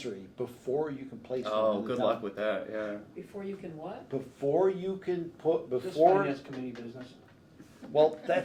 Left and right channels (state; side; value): identical; both; correlation 1.00